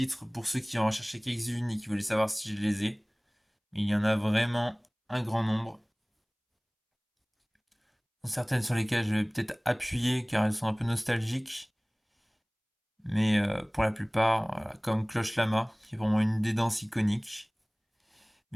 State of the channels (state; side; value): identical; both; correlation 1.00